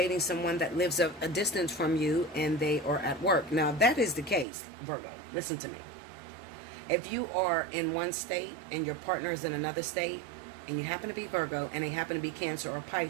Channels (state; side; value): drops out; left; at 4.5 s